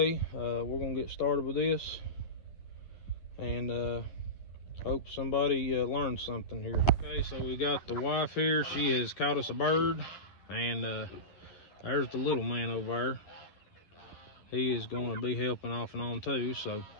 we're gonna get started with this, and hope somebody learned something here. Okay, so we got the wife here. She has caught us a bird, and there's the little man over there. He is going to be helping off and on too. So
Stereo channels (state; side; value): late; right; 11 ms